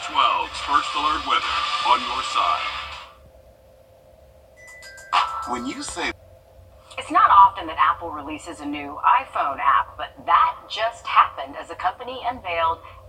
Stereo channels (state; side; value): identical; both; correlation 1.00